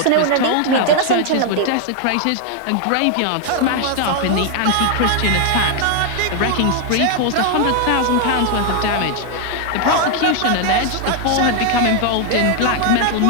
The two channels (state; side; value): different; both; correlation 0.00